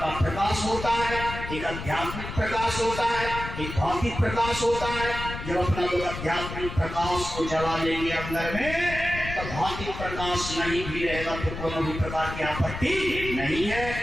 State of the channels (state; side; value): noise; left; rumble, 8 dB below the sound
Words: प्रकाश होता है, एक आध्यात्मिक प्रकाश होता है, एक भौतिक प्रकाश होता है। जब अपना लोग आध्यात्मिक प्रकाश को जला लेंगे अंदर में, तो भौतिक प्रकाश नहीं भी रहेगा तो कोनो भी प्रकार की आपत्ति नहीं है।